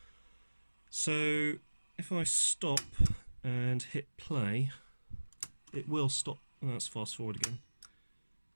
So if I stop and hit play, it will stop. Oh, let's fast forward again.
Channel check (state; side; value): inverted; both; correlation -1.00